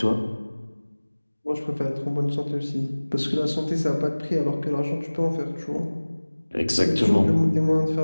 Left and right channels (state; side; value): inverted; both; correlation -1.00